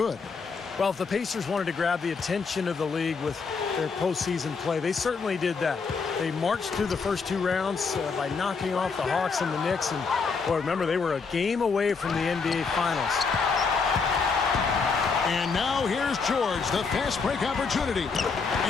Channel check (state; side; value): quieter; right; 5.0 dB